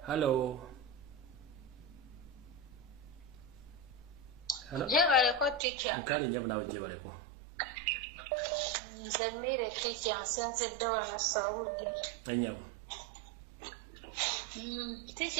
Hello. Hello. Jebaleko teacher. Nkali nyabu nawe jebaleko. Nze mmire teacher nsenzedde wano Saudi. Enyabu.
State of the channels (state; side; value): drops out; left; at 5.6 s